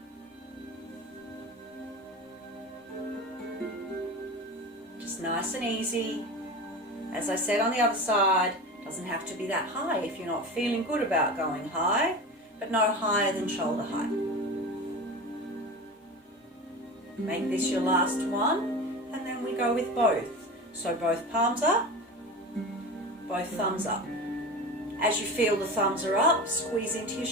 Nice and easy. As I said on the other side, doesn't have to be that high if you're not feeling good about going high, but no higher than shoulder height. Make this your last one, and then we go with both. So both palms up, both thumbs up. As you feel the thumbs are up, squeeze into your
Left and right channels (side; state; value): both; normal; correlation 0.30